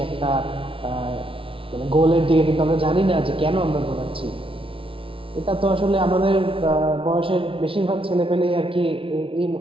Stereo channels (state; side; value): late; left; 0.26 ms